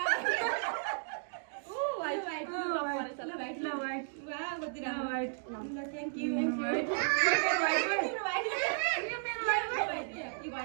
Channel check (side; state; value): left; silent; digital silence